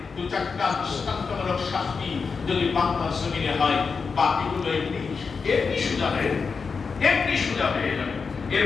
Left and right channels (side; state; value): right; quieter; 5.2 dB